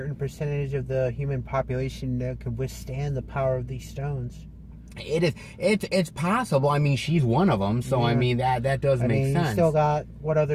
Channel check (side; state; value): both; identical; correlation 1.00